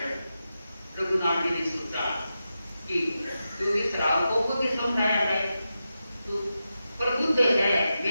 रघुनाथ जी ने सोचा कि क्योंकि श्रावकों को भी समझाया है, तो प्रबुद्ध है,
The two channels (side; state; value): both; inverted; correlation -0.90